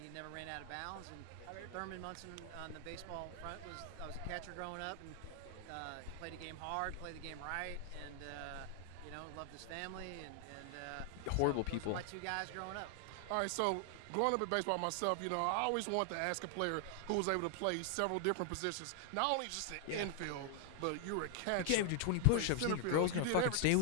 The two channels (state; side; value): different; both; correlation 0.00